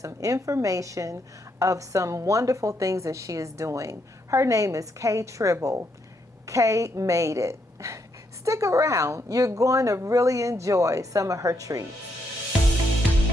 information of some wonderful things that she is doing. Her name is Kay Tribble. Kay made it. Stick around. You're going to really enjoy some of her treats.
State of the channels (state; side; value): normal; both; correlation 0.77